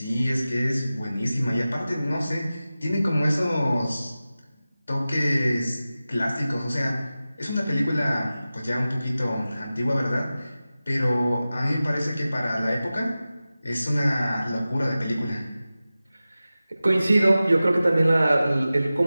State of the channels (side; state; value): both; inverted; correlation -0.95